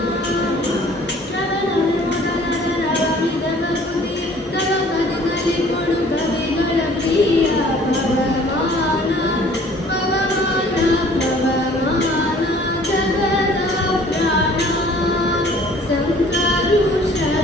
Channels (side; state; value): both; normal; correlation 0.53